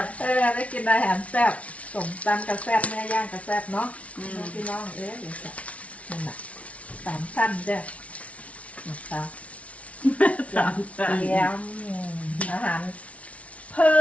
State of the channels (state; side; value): late; right; 0.065 ms